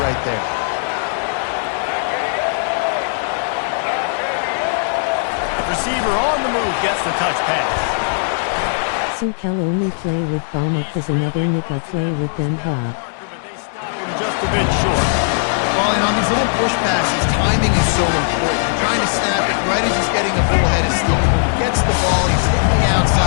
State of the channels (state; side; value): silent; right; digital silence